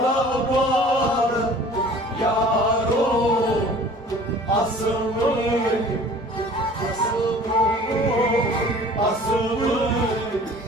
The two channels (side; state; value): both; normal; correlation 0.47